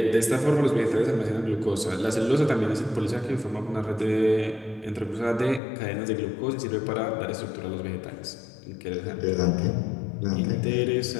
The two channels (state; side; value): drops out; right; at 5.6 s